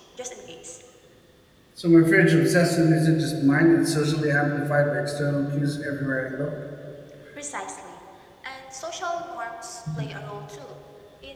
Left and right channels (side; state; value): both; identical; correlation 1.00